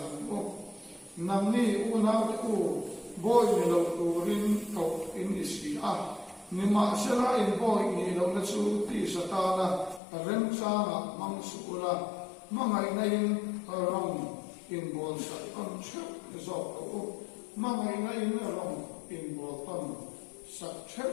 mo namni una ku boy ni lo turin ko in isi nima sera in boy ni lo na chu ti satana rem changa mang sukula mangai nain rong in bol sa kon chu zok ko mangai nain rong in bol ton sak chep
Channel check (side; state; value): right; drops out; at 10.0 s